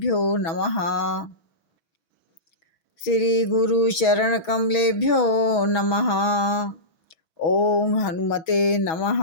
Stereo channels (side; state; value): right; late; 6.2 ms